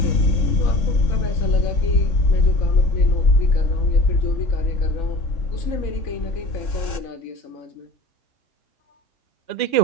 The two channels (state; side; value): late; right; 3.7 ms